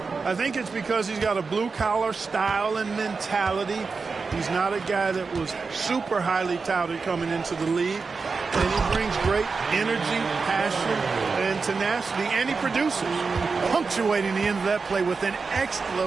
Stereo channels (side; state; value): left; quieter; 4.6 dB